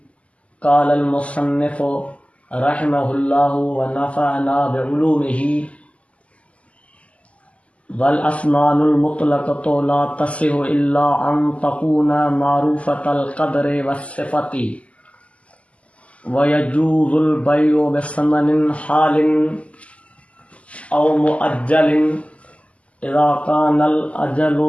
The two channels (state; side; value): late; right; 0.064 ms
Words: क़ालल मुसन्निफ़ रहमहुल्लाहु व नफ़अना बिउलूमिही वल अस्मानुल मुतलक़तु ला तसिहु इल्ला अन तकूना मारूफ़तल क़द्रि वस्सिफ़ति व यजूज़ुल बैउ बिसमनिन हालिन औ मुअज्जलिन इज़ा कानल